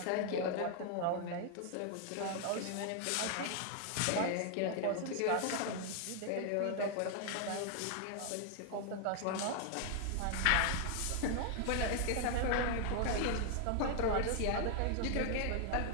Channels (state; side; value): different; both; correlation 0.00